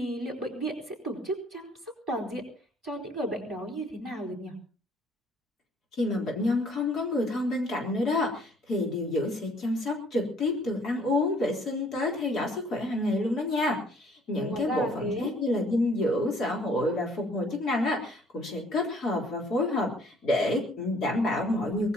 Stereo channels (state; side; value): normal; both; correlation 0.59